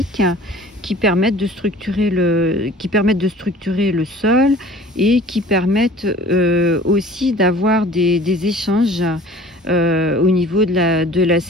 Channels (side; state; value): both; normal; correlation 0.46